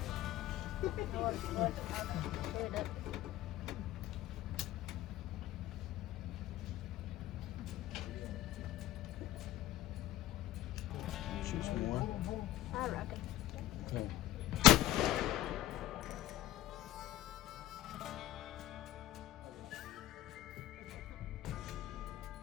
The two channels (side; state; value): right; quieter; 14.4 dB